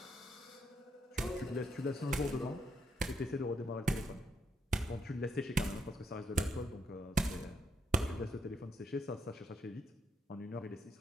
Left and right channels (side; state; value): both; normal; correlation 0.77